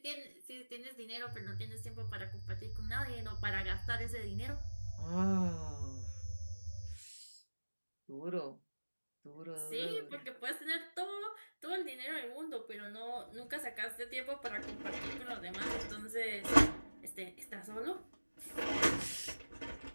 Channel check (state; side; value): inverted; both; correlation -1.00